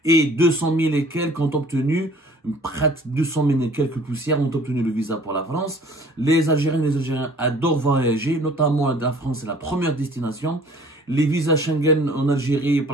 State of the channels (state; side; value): normal; both; correlation 0.52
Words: et 200 000 et quelques ont obtenu, près de 200 000 et quelques poussières ont obtenu le visa pour la France. Les Algériens et les Algériens adorent voyager, notamment la France est la première destination. Les visas Schengen en Algérie,